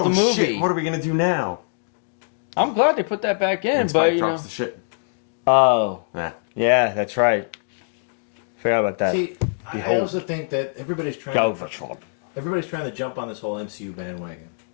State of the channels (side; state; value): right; silent; digital silence